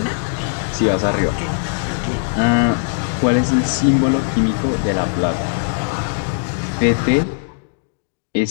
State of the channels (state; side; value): silent; right; digital silence